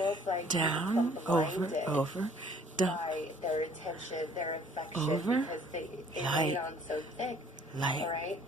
like down, over, down. By their attention, their affection, over, because they lay it on so thick. Light. All right?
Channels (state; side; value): normal; both; correlation 0.57